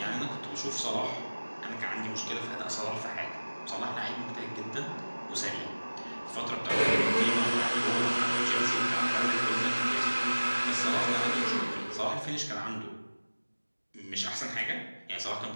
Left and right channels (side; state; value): both; inverted; correlation -1.00